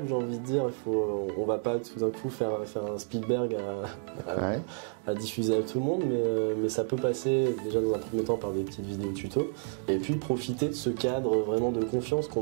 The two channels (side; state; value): left; silent; 58 dB below the other